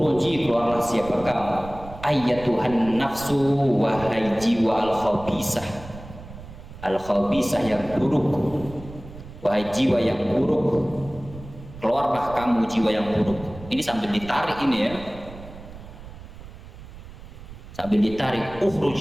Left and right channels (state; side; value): noise; right; rumble, 15 dB below the sound